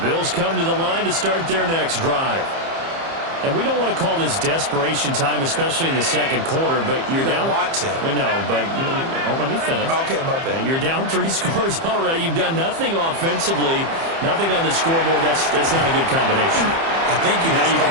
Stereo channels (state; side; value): late; left; 30 ms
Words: Bills come to the line to start their next drive. And we don't want to call this desperation time, especially in the second quarter, but you're down. You don't want to. I know, but let me finish. Okay, my bad. You're down 3 scores already. You've done nothing offensively, nothing on the scoreboard. That's not a good combination. I think you